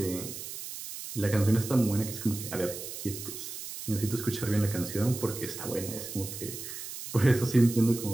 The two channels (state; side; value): noise; right; hiss, 9 dB below the sound